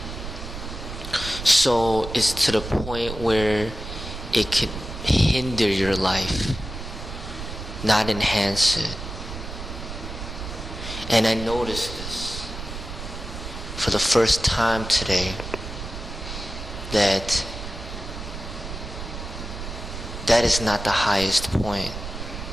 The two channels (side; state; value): right; noise; rumble, 9 dB below the sound